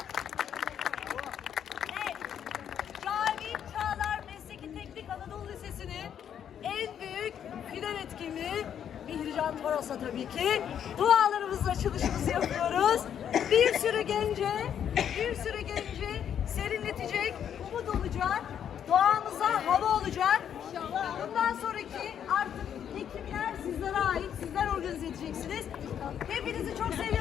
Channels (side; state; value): right; quieter; 9.0 dB